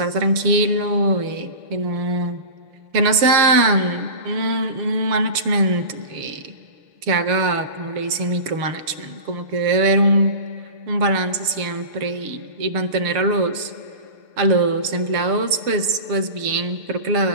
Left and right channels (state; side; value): late; left; 6.7 ms